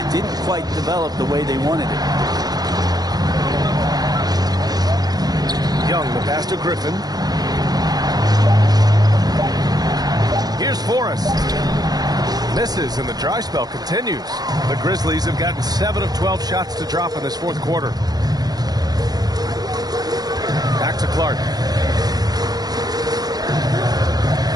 didn't quite develop the way they wanted it. Young, the pass to Griffin. Here's Forrest. Misses, and the dry spell continues. The Grizzlies have gotten 7 of 12 shots to drop in this fourth quarter. Back to Clark.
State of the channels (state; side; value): late; left; 0.19 ms